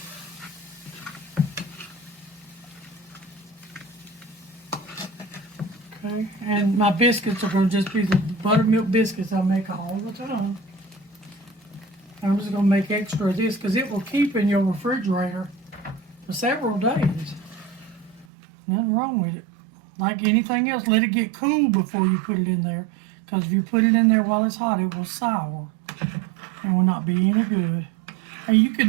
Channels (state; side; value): drops out; left; at 18.2 s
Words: okay, and my biscuits are going to just be the buttermilk biscuits I make all the time. I'm just going to make extra of this because it will keep in your refrigerator for several days. Nothing wrong with it. Like anything else, let it get cool before you put it in there. Because if you put it in there while it's hot, it will sour. And will not be any good. And you